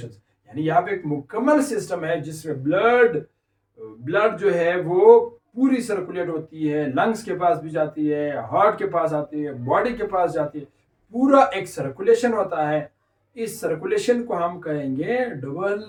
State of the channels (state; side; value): identical; both; correlation 1.00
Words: यानी यहाँ पे एक मुकम्मल सिस्टम है जिसमें ब्लड जो है वो पूरी सर्कुलेट होती है, लंग्स के पास भी जाती है, हार्ट के पास आती है, बॉडी के पास जाती है, पूरा एक सर्कुलेशन होता है। इस सर्कुलेशन को हम कहेंगे